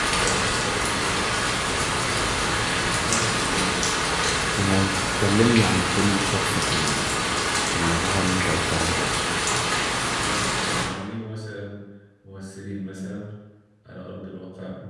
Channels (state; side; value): identical; both; correlation 1.00